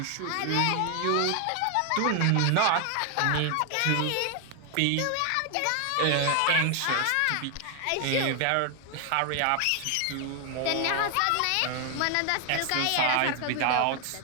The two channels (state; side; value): different; both; correlation 0.00